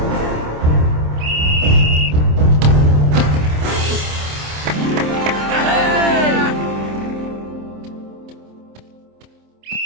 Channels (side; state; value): left; late; 26 ms